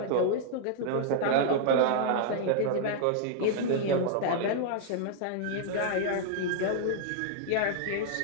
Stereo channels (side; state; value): both; different; correlation -0.01